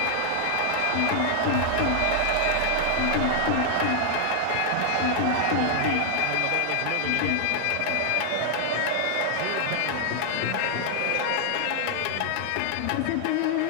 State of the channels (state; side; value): different; both; correlation 0.00